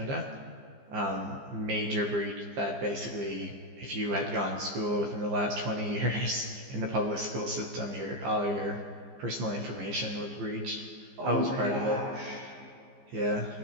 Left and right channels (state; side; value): late; left; 15 ms